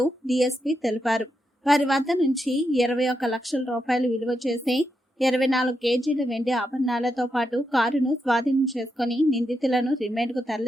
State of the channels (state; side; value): normal; both; correlation 0.84